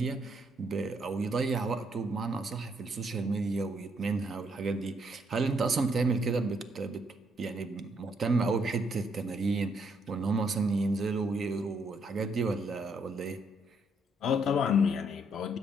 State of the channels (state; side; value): normal; both; correlation 0.72